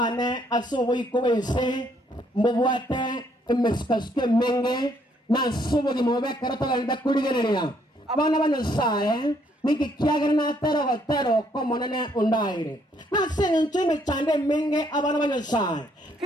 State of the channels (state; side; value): normal; both; correlation 0.69